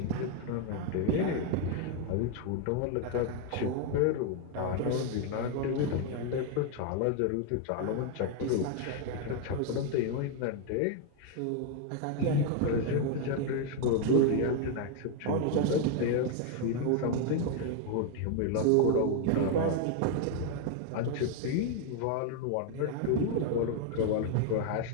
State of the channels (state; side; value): different; both; correlation 0.00